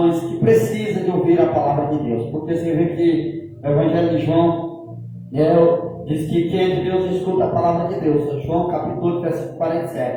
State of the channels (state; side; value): identical; both; correlation 1.00